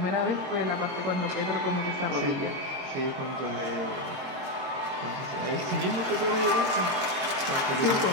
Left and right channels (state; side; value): late; left; 22 ms